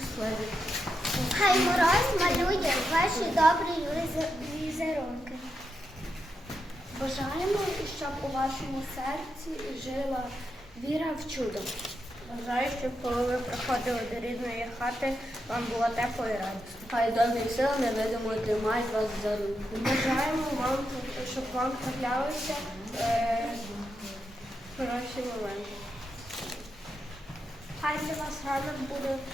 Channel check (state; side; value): normal; both; correlation 0.85